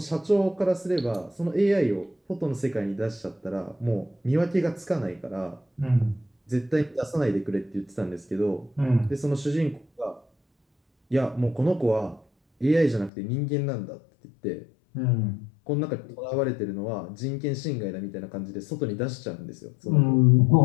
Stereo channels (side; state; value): right; drops out; at 13.1 s